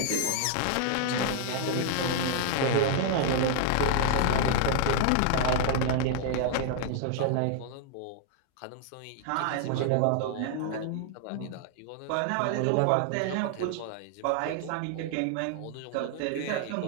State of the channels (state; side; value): different; both; correlation -0.01